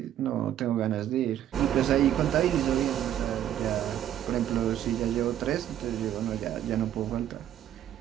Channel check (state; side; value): quieter; left; 11.3 dB